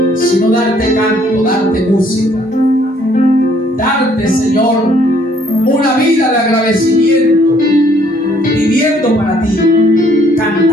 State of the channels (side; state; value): both; normal; correlation 0.63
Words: sino darte canto, darte música. Darte, Señor, una vida de agradecimiento, viviendo para ti,